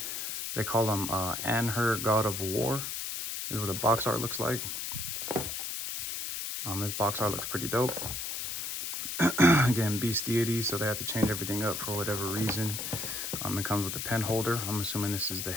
They call him Anhur, God of War. This is what the box art looks like. This box art looks pretty dope. Again, Beast Deity, so they have to change everything up for whatever reason. It comes with the pen holder. I'm assuming this is the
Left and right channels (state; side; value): noise; left; hiss, 4 dB below the sound